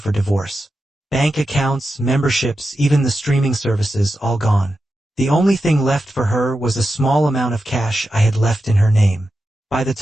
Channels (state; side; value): normal; both; correlation 0.90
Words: divorce. Bank accounts, memberships, even the streaming services, all gone. The only thing left for her was a small amount of cash I had left in her name. By the